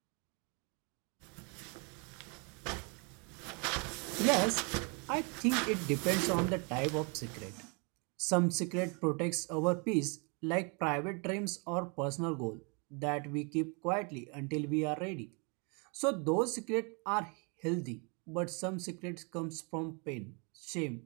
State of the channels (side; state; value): left; quieter; 34.0 dB